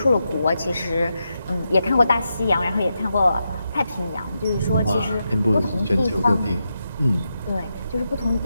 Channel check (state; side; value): inverted; both; correlation -0.86